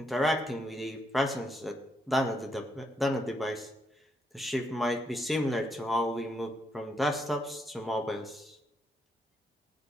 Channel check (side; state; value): both; normal; correlation 0.77